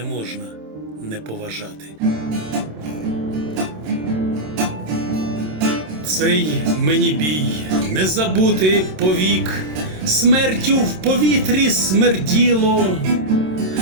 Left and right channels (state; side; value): late; left; 27 ms